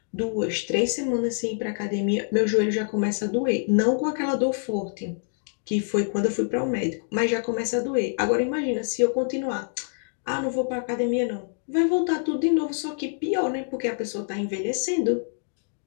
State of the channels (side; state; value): right; silent; digital silence